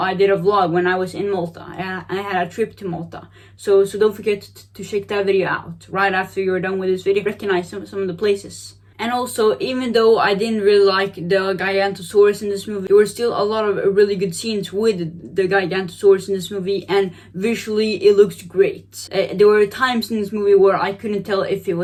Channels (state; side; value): identical; both; correlation 1.00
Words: did a vlog when I was in Malta. I had a trip to Malta. So don't forget to check that video out right after you're done with this video. Recognize some of the places And also, even though I didn't really like the Gigantosaurus in this movie, there were still a lot of really good scenes with the Gigantosaurus in this movie, and visually it looks great. There were times in this movie where I couldn't tell if it